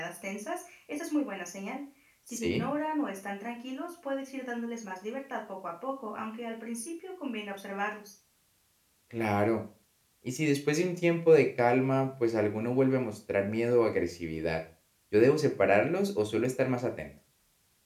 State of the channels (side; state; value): both; identical; correlation 1.00